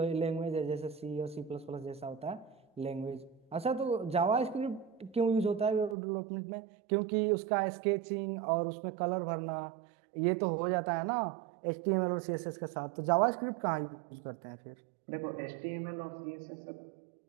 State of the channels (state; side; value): drops out; left; at 6.0 s